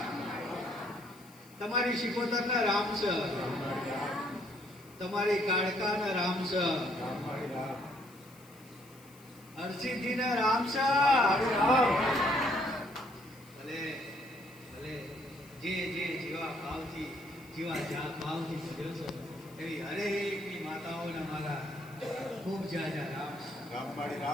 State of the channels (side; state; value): left; noise; hiss, 24 dB below the sound